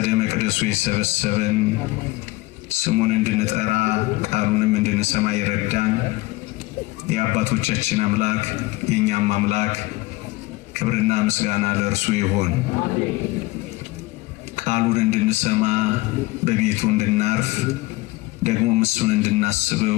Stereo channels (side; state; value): right; quieter; 20.4 dB